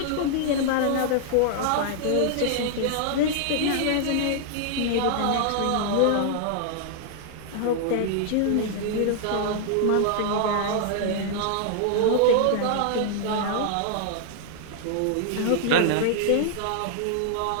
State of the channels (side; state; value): both; different; correlation 0.00